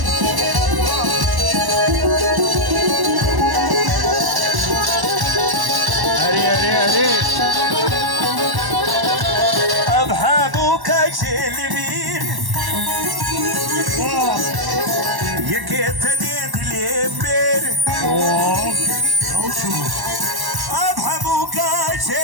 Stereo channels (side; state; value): left; late; 1.1 ms